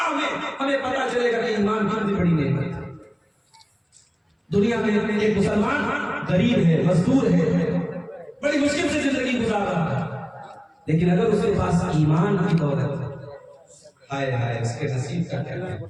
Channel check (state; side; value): identical; both; correlation 1.00